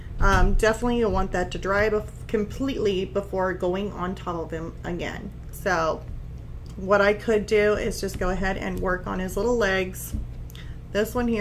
definitely you'll want that to dry completely before going on top of him again. So what I could do is just go ahead and work on his little legs. This one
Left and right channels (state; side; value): identical; both; correlation 1.00